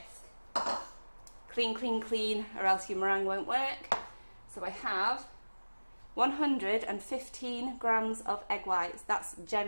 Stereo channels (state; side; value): inverted; both; correlation -1.00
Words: Clean, clean, clean, or else your meringue won't work. So I have 115 grams of egg whites. That's